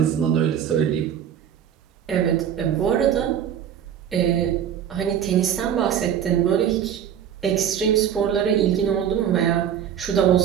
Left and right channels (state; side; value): quieter; left; 9.3 dB